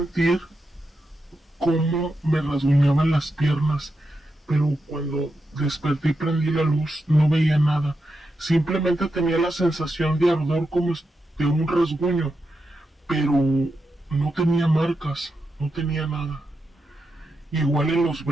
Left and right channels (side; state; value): both; normal; correlation 0.87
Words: cómo me rasguñaban las piernas, pero cuando desperté y prendí la luz no veía nada, simplemente tenía la sensación de ardor como de un rasguño, pero no tenía marcas, no tenía nada. Igual en los